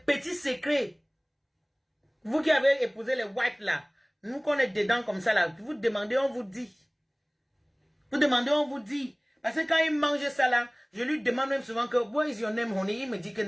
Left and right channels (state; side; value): identical; both; correlation 1.00